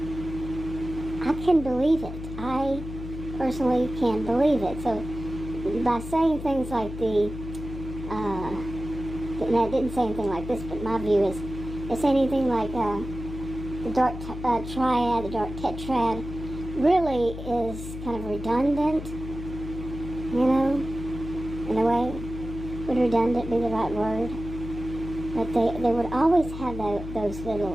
I can believe it. I personally can believe it. So by saying things like and I didn't say anything like this, but my view is, it's anything like the dark triad, the dark tetrad, really is kind of redundant, in a way. Would redundant be the right word? But they would always have those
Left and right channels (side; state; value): left; noise; hum, 9 dB below the sound